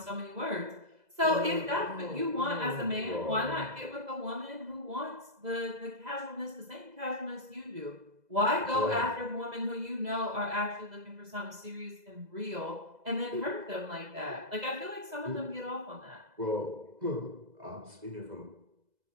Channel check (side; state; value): left; late; 2.0 ms